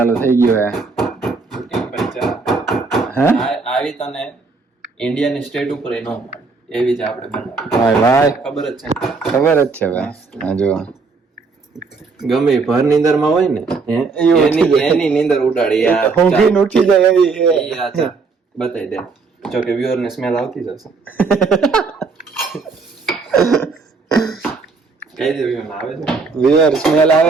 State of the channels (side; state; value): left; quieter; 4.4 dB